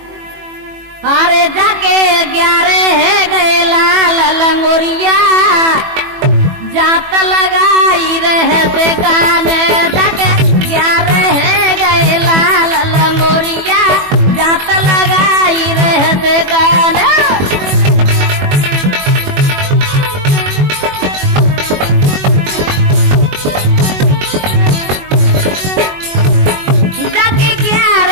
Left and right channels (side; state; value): left; late; 21 ms